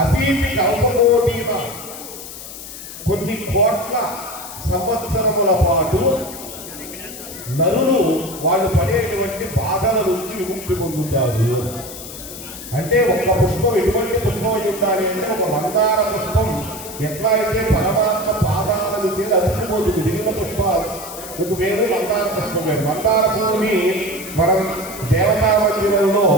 అసీతి కల్పకోటీన కొన్ని కోట్ల సంవత్సరముల పాటు నరులు వాళ్ళు పడేటువంటి బాధల నుంచి విముక్తి పొందుతారు. అంటే ఒక్క పుష్పం ఎటువంటి పుష్పం అయి ఉండాలి అంటే ఒక మందార పుష్పం ఎట్లా అయితే పరమాత్మ పాదాలను చేసి అతికిపోతుంది. మిగిలిన పుష్పాలు మీకు వేరు, మందార పుష్పం వేరు. మందార పువ్వుని మనం దేవతా మందిరంలో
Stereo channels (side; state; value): left; noise; hiss, 12 dB below the sound